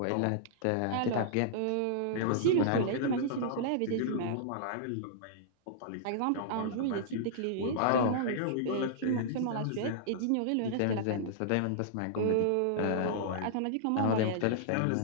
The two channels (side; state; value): both; different; correlation -0.02